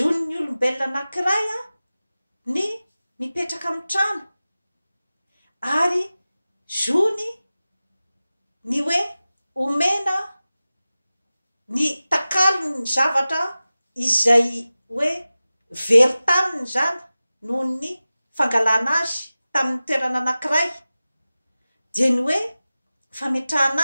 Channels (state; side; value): inverted; both; correlation -0.96